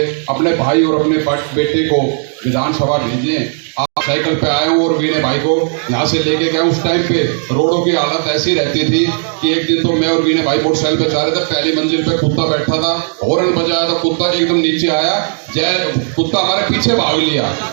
अपने भाई और अपने बेटे को विधानसभा भेजें। आप साइकिल पे आए हो और वीणे भाई को यहाँ से लेके गए, उस टाइम पे रोडों की हालत ऐसी रहती थी कि एक दिन तो मैं और वीणे भाई मोटरसाइकिल पे जा रहे थे, पहली मंजिल पे कुत्ता बैठा था, हॉर्न बजाया था, कुत्ता एकदम नीचे आया, कुत्ता हमारे पीछे भाग लिया,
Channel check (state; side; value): silent; left; 57 dB below the other